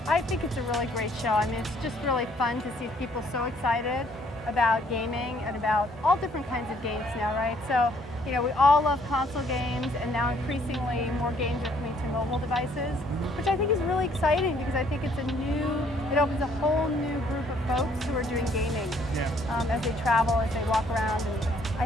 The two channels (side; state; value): both; normal; correlation 0.64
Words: I think it's a really great show. I mean, it's just really fun to see people so excited about gaming and about all different kinds of games now, right? So, you know, we all love console games, and now increasingly more games are coming to mobile devices, which I think is really exciting because I think it opens a whole new group of folks who are doing gaming as they travel, as they walk around, and I